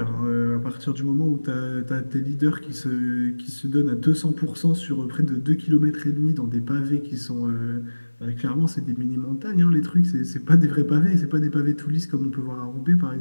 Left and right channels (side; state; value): both; inverted; correlation -1.00